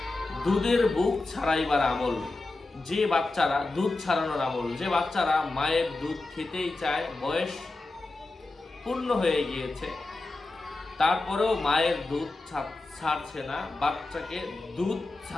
দুধের বুক ছাড়াইবার আমল। যে বাচ্চারা দুধ ছাড়ানোর আমল, যে বাচ্চারা মায়ের দুধ খেতেই চায়, বয়স পূর্ণ হয়ে গিয়েছে, তারপরেও মায়ের দুধ ছাড়ছে না, বাচ্চাকে দুধ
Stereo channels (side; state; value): right; quieter; 3.2 dB